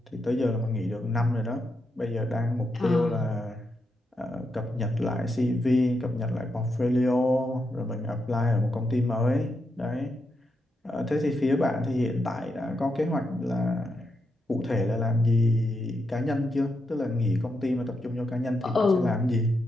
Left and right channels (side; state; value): both; normal; correlation 0.83